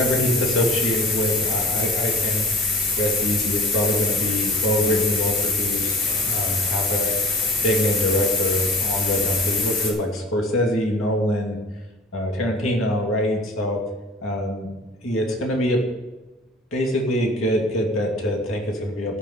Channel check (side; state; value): both; normal; correlation 0.44